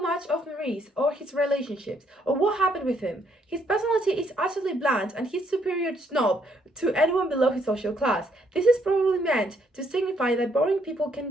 much of Maurice or his relationships or what happened with him. His personality is utterly bland and he's superior snob to anyone below his social class. This is probably meant to signify that boring people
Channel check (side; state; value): both; normal; correlation 0.70